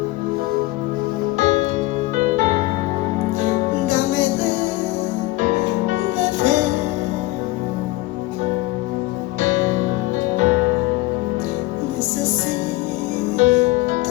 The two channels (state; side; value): quieter; right; 19.7 dB